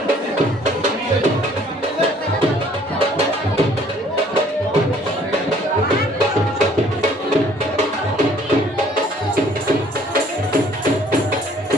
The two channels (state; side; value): normal; both; correlation 0.58